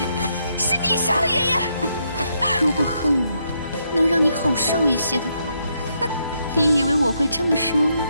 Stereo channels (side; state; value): both; inverted; correlation -0.77